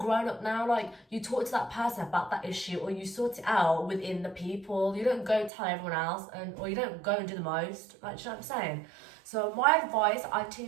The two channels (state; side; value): drops out; left; at 5.5 s